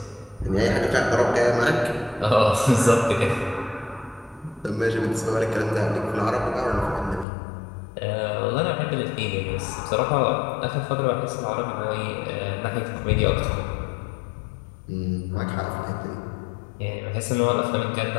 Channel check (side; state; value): right; drops out; at 7.2 s